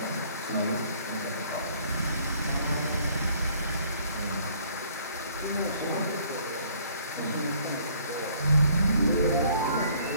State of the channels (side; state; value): both; inverted; correlation -0.60